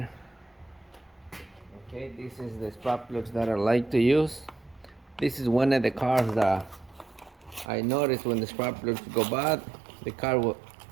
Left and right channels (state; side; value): drops out; left; at 7.7 s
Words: Okay, this is the spark plugs that I like to use. This is one of the cars that I noticed when the spark plugs go bad, the car